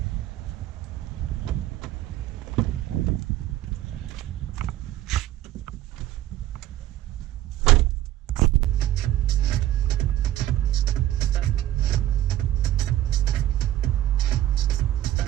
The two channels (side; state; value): left; quieter; 13.7 dB